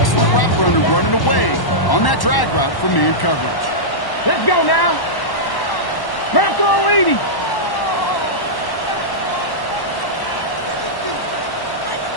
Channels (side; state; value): right; late; 1.1 ms